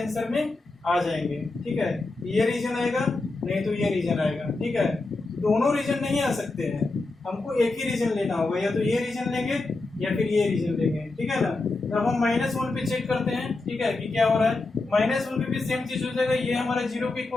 में आ जाएंगे। ठीक है, ये रीजन आएगा नहीं तो ये रीजन आएगा। ठीक है, दोनों रीजन नहीं आ सकते हैं, हमको एक ही रीजन लेना होगा, या तो ये रीजन लेंगे या फिर ये रीजन लेंगे। ठीक है ना, जब हम -1 पे चेक करते हैं, ठीक है, कि क्या हो रहा है, -1 पे भी सेम चीज हो जाएगा, ये हमारा 0 के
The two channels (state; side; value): quieter; right; 3.3 dB